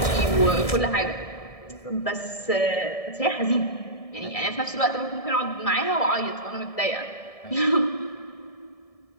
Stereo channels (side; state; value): right; late; 1.7 ms